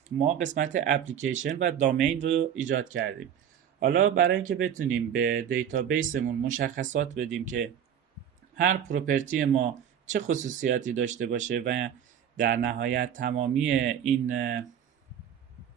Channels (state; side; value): quieter; left; 9.0 dB